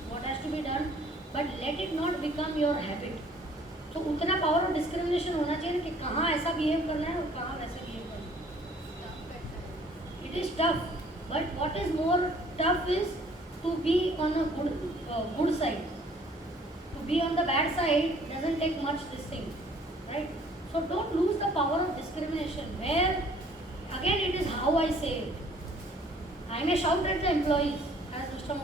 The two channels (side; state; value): both; normal; correlation 0.57